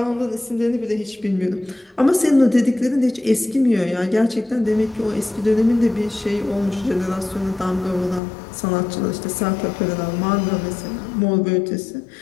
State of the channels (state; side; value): drops out; right; at 8.2 s